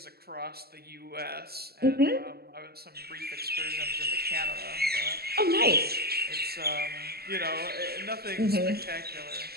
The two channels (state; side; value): late; left; 0.46 ms